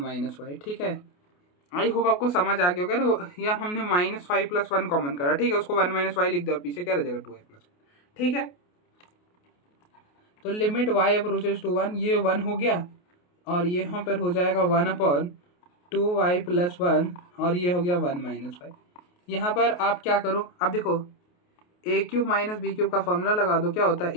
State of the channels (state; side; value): late; right; 28 ms